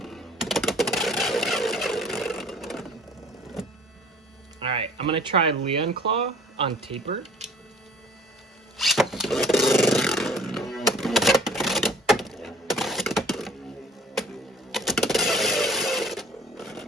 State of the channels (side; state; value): both; normal; correlation 0.50